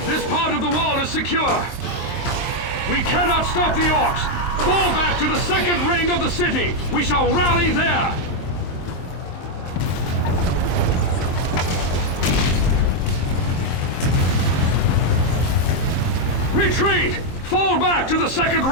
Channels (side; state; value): right; late; 23 ms